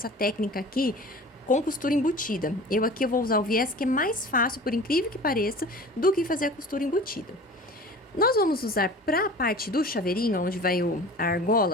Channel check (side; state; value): both; normal; correlation 0.40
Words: técnica aqui com costura embutida. Eu vou usar o viés, que é mais fácil, por incrível que pareça, do que fazer a costura embutida. Nós vamos usar para a parte do chaveirinho, onde vai a